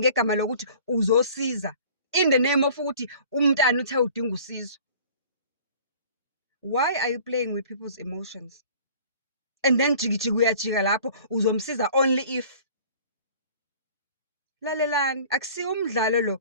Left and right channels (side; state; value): both; inverted; correlation -0.48